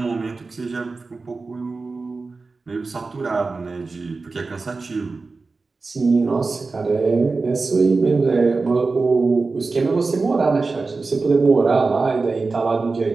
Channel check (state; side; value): quieter; left; 3.9 dB